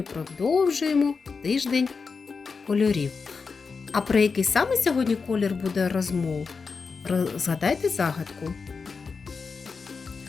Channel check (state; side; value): quieter; right; 5.0 dB